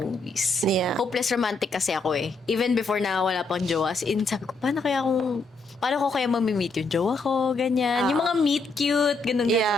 Yeah. Hopeless romantic kasi ako eh. Even before na wala pang jowa. As in, sabi ko, paano ko kaya mamimit yung jowa ko? Ganyan. Yung mga meet cute, ganun.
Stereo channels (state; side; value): quieter; right; 3.5 dB